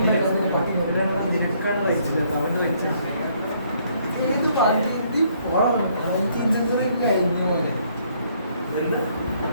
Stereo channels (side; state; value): both; inverted; correlation -0.67